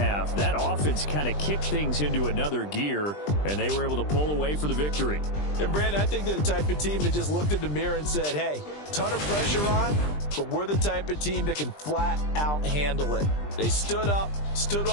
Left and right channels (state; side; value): late; right; 20 ms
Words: that offense kind of kicked things into another gear, and they were able to pull away for the victory. And, Brandon, I think they're the type of team that just looked in the mirror and said, hey, ton of pressure on, but we're the type of team that can flat out handle it. They stood up